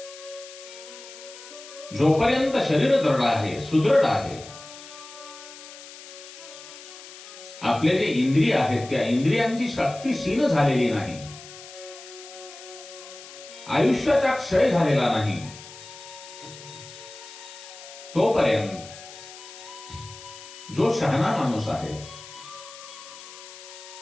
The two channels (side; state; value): left; noise; hiss, 16 dB below the sound